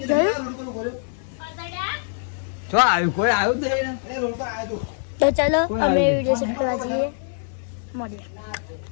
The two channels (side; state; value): right; silent; digital silence